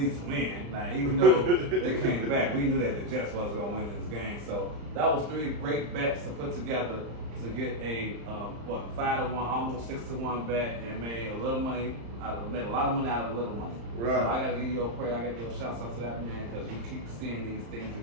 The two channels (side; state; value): left; late; 35 ms